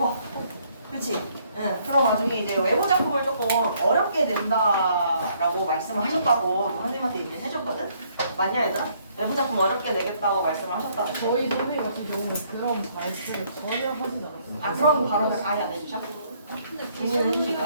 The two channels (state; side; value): inverted; both; correlation -0.67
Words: 그치? 응. 그럼 나중에 이제 외부 작품을 조금 어렵게 낸다라고 말씀을 하셨다고 선생님한테 얘기를 해줬거든? 맞냐, 얘들아? 외부 작품 어렵게 내겠다고 말씀을 하셨다고. 저희 선생님 같은 경우는 그런 발표를 전혀 하지 않았어요. 아, 그런 발언을 아예 안 해주셔? 근데 중요한